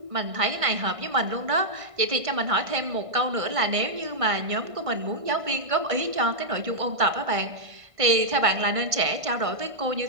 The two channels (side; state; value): left; late; 1.5 ms